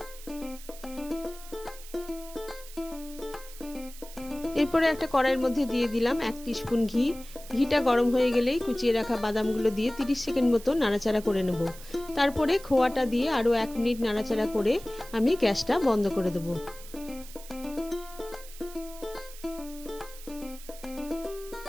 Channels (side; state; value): right; noise; hiss, 17 dB below the sound